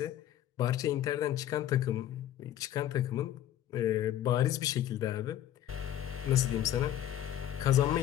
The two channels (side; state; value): right; quieter; 11.8 dB